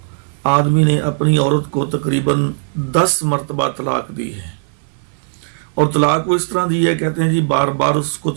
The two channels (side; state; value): left; silent; 62 dB below the other